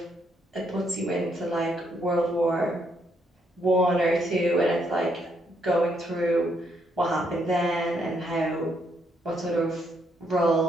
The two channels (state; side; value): normal; both; correlation 0.74